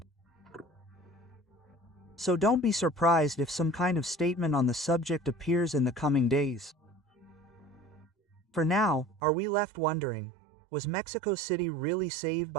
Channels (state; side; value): drops out; left; at 9.2 s